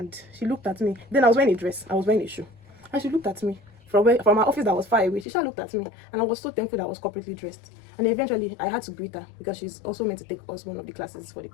she looked at me. Then I was wearing a dress. I was wearing a shoe. And she looked at me. From my office that was far away, she looked at me, and I was so thankful that I was corporately dressed. And eventually, I had to greet her because she's also meant to take us one of the classes for the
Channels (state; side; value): drops out; right; at 5.2 s